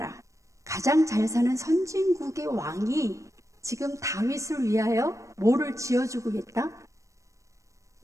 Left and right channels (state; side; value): late; left; 0.15 ms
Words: 가장 잘 사는 선진국의 왕이 지금 다윗을 위하여 뭐를 지어주고 있다?